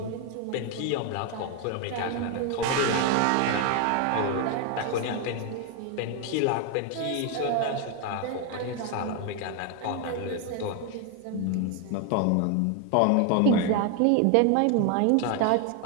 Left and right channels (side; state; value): both; different; correlation 0.01